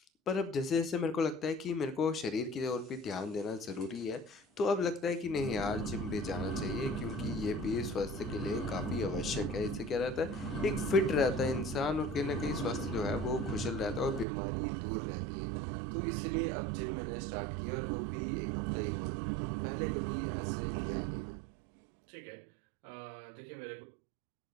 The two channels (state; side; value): drops out; left; at 14.2 s